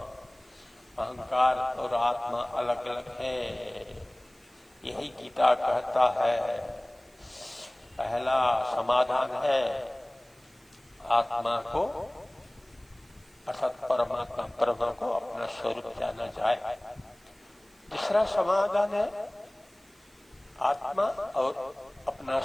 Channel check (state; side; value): noise; right; hiss, 30 dB below the sound